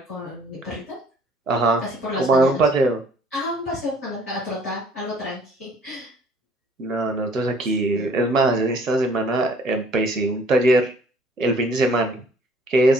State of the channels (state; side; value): normal; both; correlation 0.57